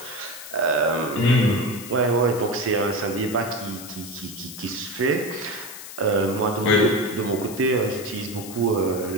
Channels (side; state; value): left; noise; hiss, 13 dB below the sound